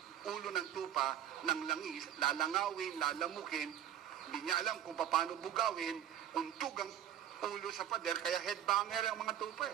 ulo ng tupa ng langis, lalangawin, lalamukin, hindi niya alam kung paano bugawin, untog ang ulo sa pader, kaya headbanger ang mga tupa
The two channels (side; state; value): left; quieter; 10.7 dB